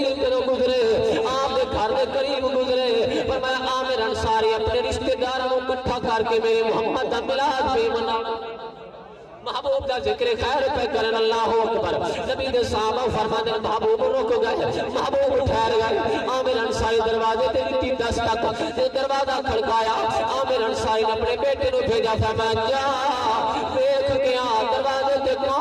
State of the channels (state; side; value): identical; both; correlation 1.00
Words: گزرے آپ دے گھر دے قریب گزرے فرمایا عامر انصاری اپنے رشتہ داروں کو اکٹھا کر کے میرے محمد دا میلاد محبوب دا ذکر خیر پہ کرن اللہ اکبر نبی دے صحابہ فرمانے محبوب رک گئے محبوب ٹھہر گئے عامر انصاری دروازے تے دتی دستک دروازہ کھڑکایا عامر انصاری نے اپنے بیٹے نو بھیجا فرمایا جا دیکھ کے آ دروازے تے